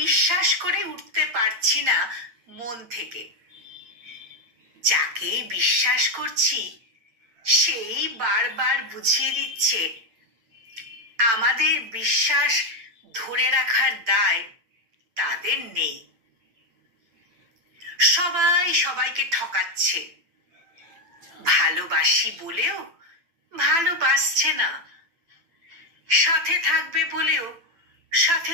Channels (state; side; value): late; left; 9.0 ms